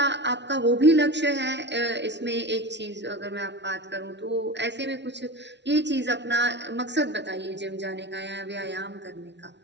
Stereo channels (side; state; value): left; late; 0.51 ms